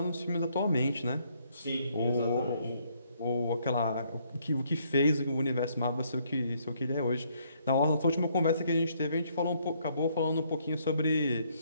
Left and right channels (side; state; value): both; inverted; correlation -0.69